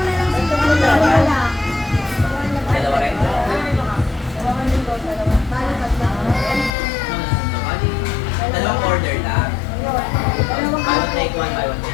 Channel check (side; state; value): right; drops out; at 6.8 s